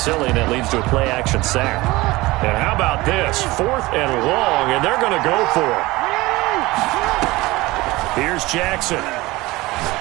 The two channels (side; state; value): left; quieter; 20.4 dB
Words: and it leads to a play action sack. And how about this? 4th and long, and they're going to go for it. Here's Jackson.